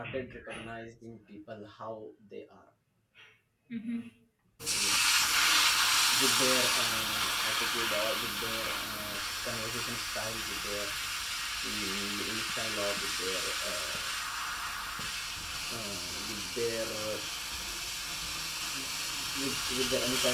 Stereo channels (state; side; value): identical; both; correlation 1.00